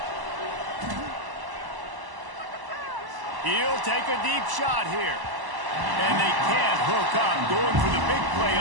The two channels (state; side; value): late; left; 1.0 ms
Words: He'll take a deep shot here. And they can't hook up. Going for the big play